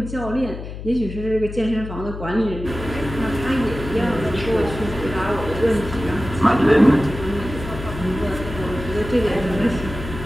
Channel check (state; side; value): noise; left; hum, 9 dB below the sound